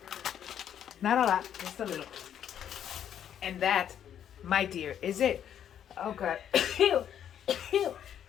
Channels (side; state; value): right; quieter; 9.6 dB